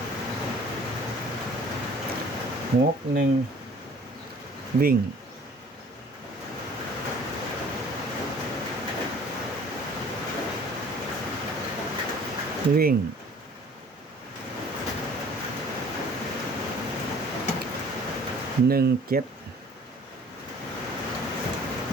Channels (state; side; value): normal; both; correlation 0.52